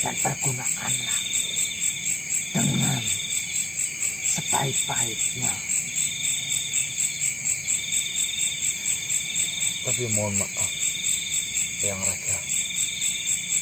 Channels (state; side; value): noise; right; hiss, 22 dB below the sound